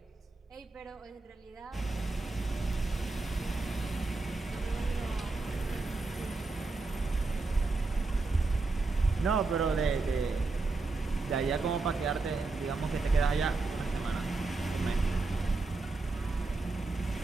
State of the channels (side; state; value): left; quieter; 3.6 dB